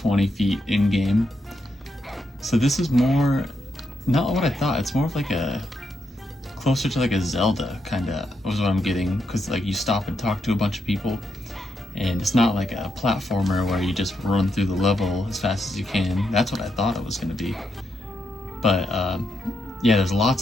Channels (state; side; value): normal; both; correlation 0.81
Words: feet in game. So this is more not what I thought. It's more of like a closer to like a Zelda kind of was what I'm getting, because like you stop and talk to a bunch of people, and it's not like a platformer where you just run through the level as fast as you can. That's what I thought it was going to be, but yeah, there's